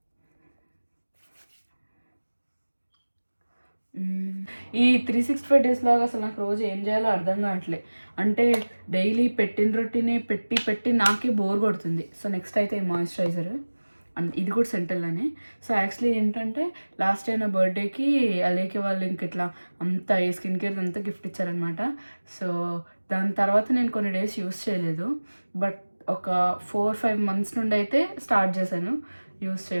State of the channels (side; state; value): both; inverted; correlation -1.00